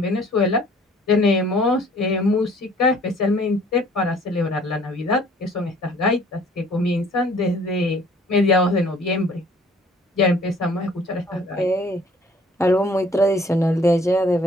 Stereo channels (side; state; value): both; normal; correlation 0.56